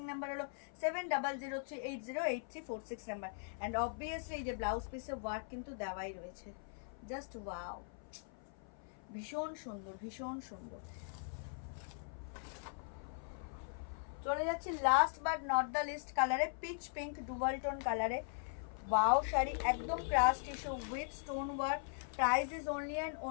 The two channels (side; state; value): right; silent; 51 dB below the other